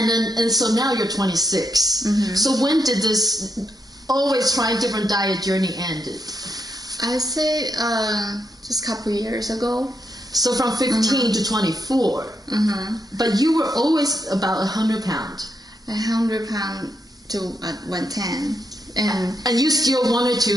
so now you're 26. So when did this always trying different diet journey ended? I say just a couple years ago. So from 15 to 24. But you were always about 100 pound. 100 pound to 110. And you still wanted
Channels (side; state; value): both; normal; correlation 0.81